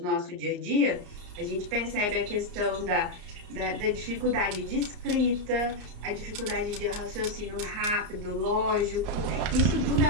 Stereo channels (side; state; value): left; late; 34 ms